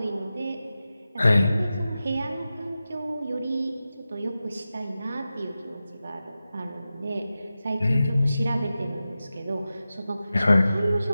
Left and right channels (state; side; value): inverted; both; correlation -0.93